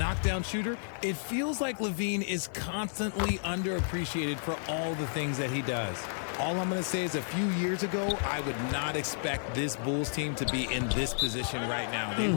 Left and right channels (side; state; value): right; silent; digital silence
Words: shooter, it feels like Levine is constantly underappreciated for all the things that he does. All I'm going to say is a few years ago, I would not expect this Bulls team to be in this position right now. They